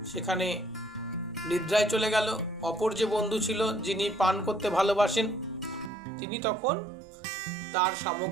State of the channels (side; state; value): left; drops out; at 5.9 s